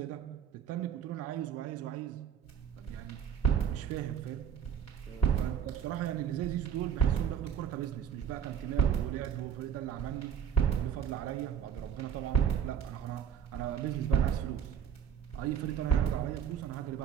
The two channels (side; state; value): left; quieter; 8.6 dB